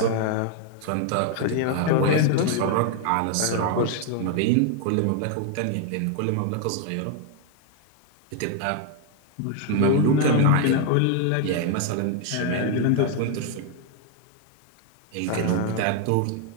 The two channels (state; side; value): different; both; correlation 0.00